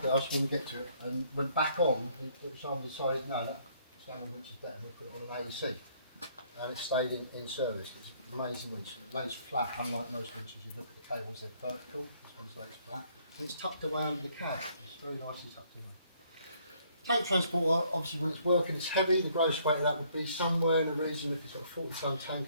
there, I was going to get to it, and went back on, which I decided, no, that winch is better, and we put it on an AEC. And it stayed in service. It's an amazing winch. It lays flat, unlike most winches. You look at the cables, they're vertical. This one's lays flat. And it's tucked away under the cab. It's very nicely tucked away. Tank transporter, obviously when it's working, it's heavy. The gross weight of that would be somewhere in the region, if it's got a 40 tonne tank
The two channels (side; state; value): both; inverted; correlation -0.65